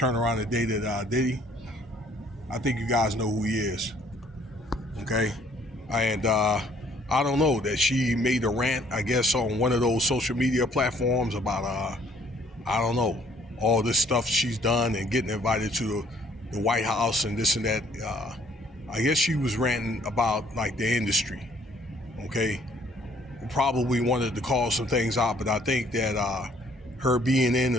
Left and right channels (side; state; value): both; normal; correlation 0.61